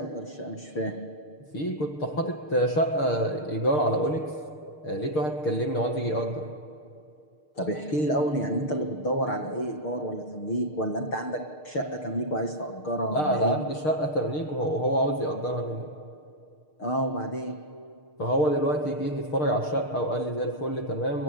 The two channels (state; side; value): late; right; 6.6 ms